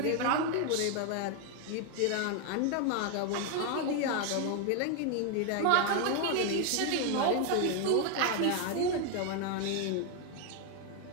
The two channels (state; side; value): different; both; correlation 0.01